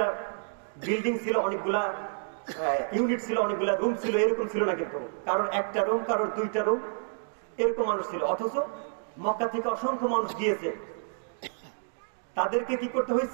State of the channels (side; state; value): left; silent; digital silence